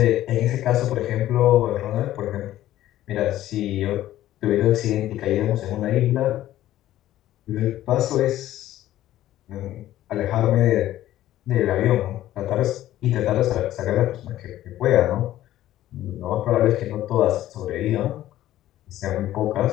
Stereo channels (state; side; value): quieter; right; 13.8 dB